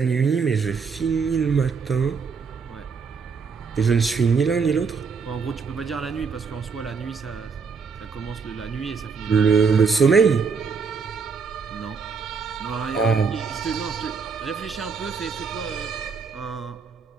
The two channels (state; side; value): quieter; left; 5.4 dB